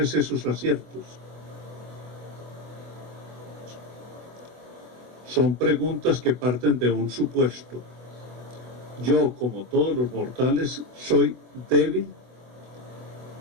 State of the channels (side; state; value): left; late; 24 ms